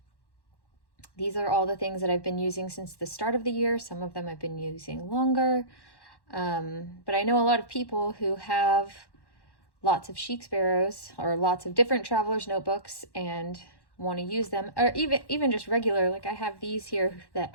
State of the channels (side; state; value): right; late; 1.1 ms